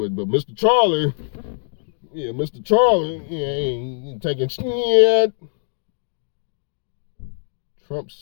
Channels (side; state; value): right; silent; digital silence